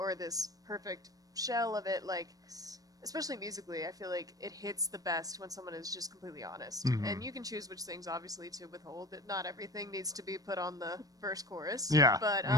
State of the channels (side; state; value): left; late; 0.18 ms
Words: this perfect shell of it. Like, especially musically, I feel like it hits the best when someone is just completely honest. Mhm. And you can choose which things, obviously, to withhold. That not everything needs to be put on the verse chorus. Yeah. But